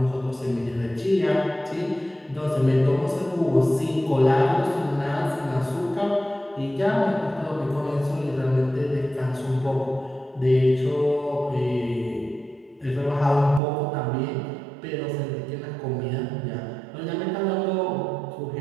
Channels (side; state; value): left; drops out; at 13.6 s